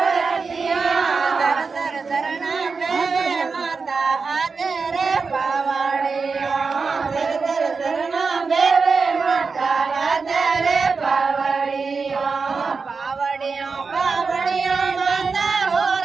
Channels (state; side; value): quieter; left; 4.8 dB